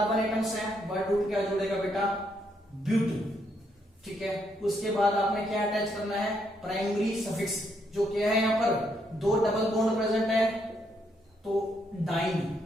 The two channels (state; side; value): normal; both; correlation 0.75